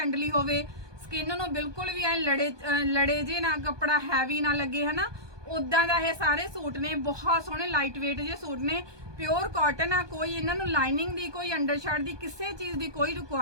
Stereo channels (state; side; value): late; left; 1.2 ms